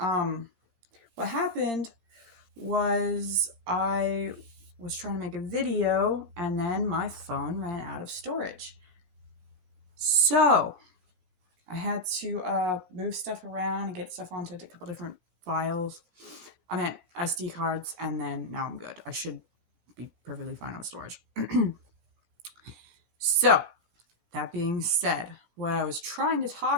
What happened was I was trying to make a video and then my phone ran out of storage. So I had to move stuff around and get stuff onto a couple different files. I meant SD cards, and then now I'm good. I should be perfectly fine with storage. So, that being said, what I was trying to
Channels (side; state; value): left; late; 16 ms